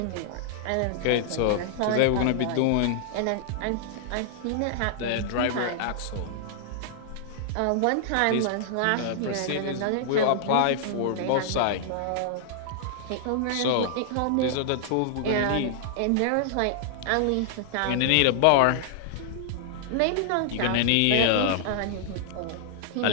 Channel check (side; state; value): both; different; correlation -0.01